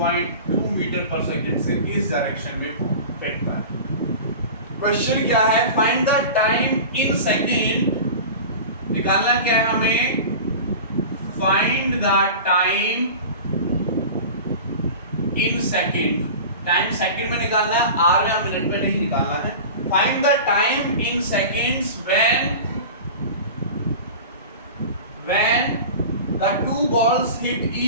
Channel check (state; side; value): inverted; both; correlation -0.34